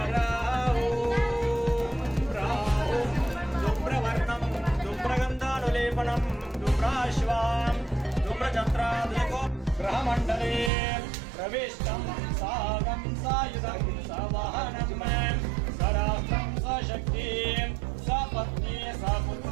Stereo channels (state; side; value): drops out; left; at 10.7 s